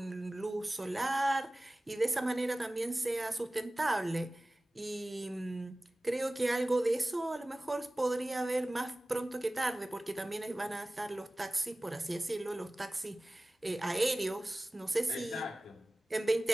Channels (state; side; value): normal; both; correlation 0.98